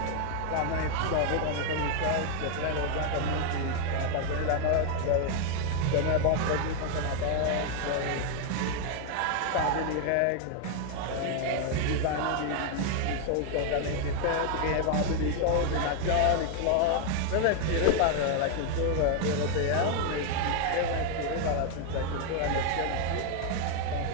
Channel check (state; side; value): different; both; correlation 0.00